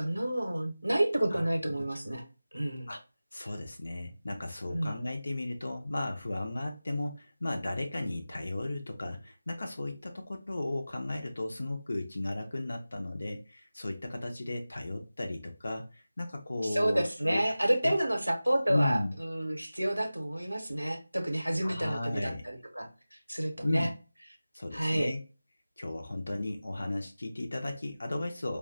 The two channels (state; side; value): inverted; both; correlation -0.97